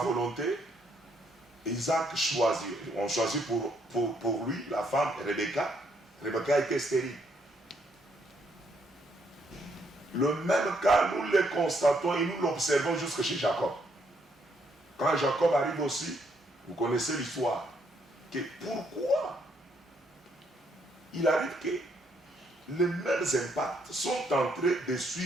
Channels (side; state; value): both; normal; correlation 0.72